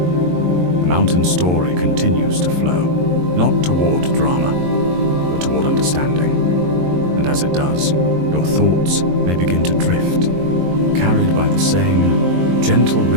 mountain story continues to flow, not toward drama, but toward understanding. And as it does, your thoughts may begin to drift, carried by the same gentle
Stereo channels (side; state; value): left; late; 22 ms